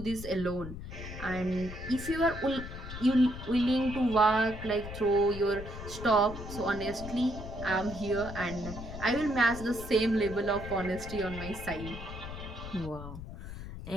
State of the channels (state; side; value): noise; left; rumble, 10 dB below the sound